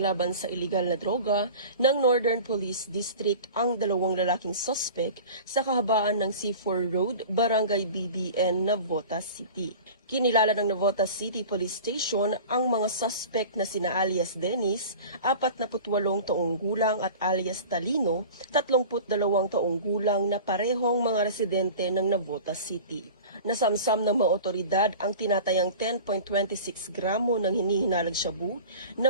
sa iligal na droga ng Northern Police District ang dalawang lalaking suspect sa kahabaan ng C4 Road, Barangay BBN, Navotas City. Kinilala ng Navotas City Police Station ang mga suspect na sina alias Dennis, 48 taong gulang at alias Talino, 32 taong gulang na parehong mga residente ng Navotas City. Nasamsam ng mga otoridad ang tinatayang 10.26 gramo ng hinihinalang shabu na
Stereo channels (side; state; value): both; inverted; correlation -0.38